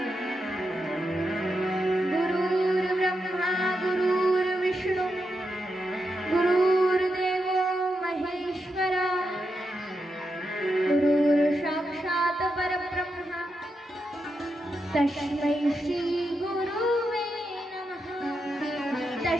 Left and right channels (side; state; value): both; normal; correlation 0.85